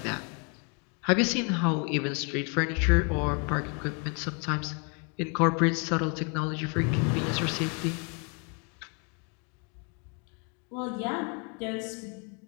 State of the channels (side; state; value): right; quieter; 36.2 dB